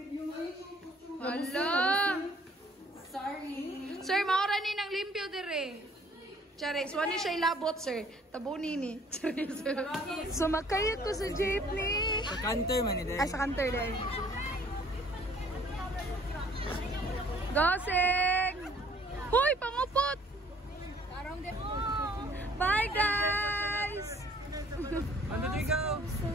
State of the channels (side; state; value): both; normal; correlation 0.58